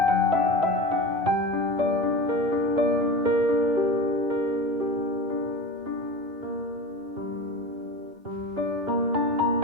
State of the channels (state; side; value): normal; both; correlation 0.30